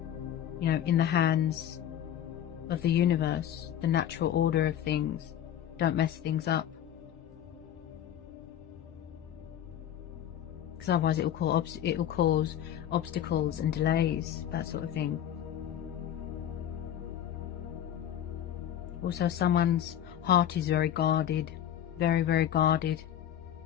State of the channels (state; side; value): quieter; right; 10.7 dB